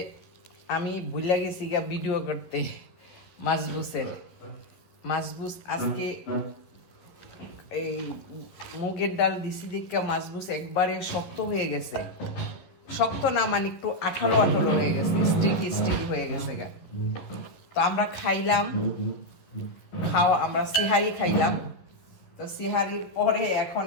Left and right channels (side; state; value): right; late; 11 ms